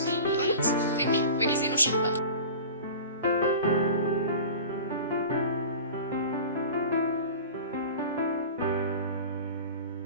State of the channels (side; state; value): both; inverted; correlation -0.37